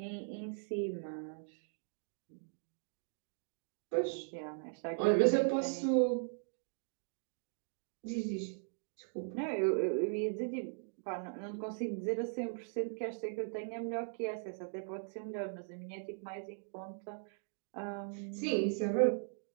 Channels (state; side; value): silent; left; digital silence